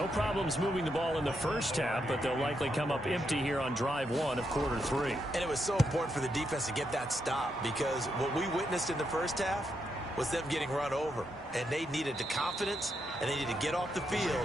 problems moving the ball in the first half, but they'll likely come up empty here on drive 1 of quarter 3. And it was so important for the defense to get that stop because what we witnessed in the first half was them getting run over. And they needed the confidence, and they needed to get off the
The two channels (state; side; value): normal; both; correlation 0.81